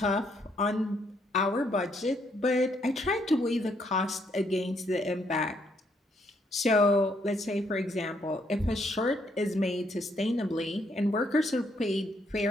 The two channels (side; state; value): both; normal; correlation 0.72